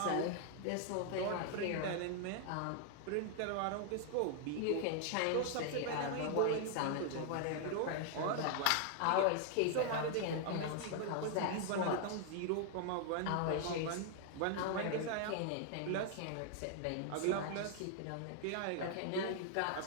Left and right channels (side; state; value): both; different; correlation 0.00